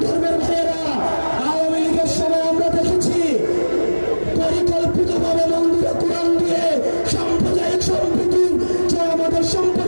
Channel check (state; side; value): inverted; both; correlation -1.00